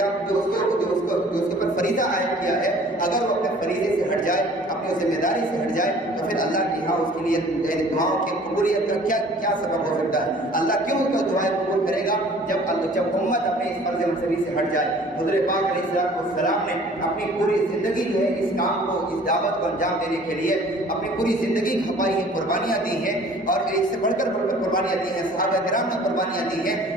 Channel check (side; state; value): both; normal; correlation 0.51